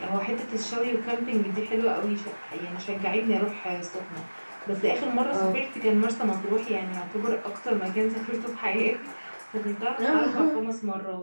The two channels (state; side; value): inverted; both; correlation -1.00